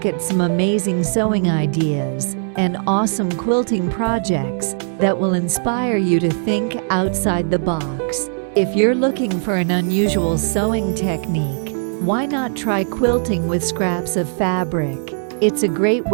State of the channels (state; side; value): silent; left; 65 dB below the other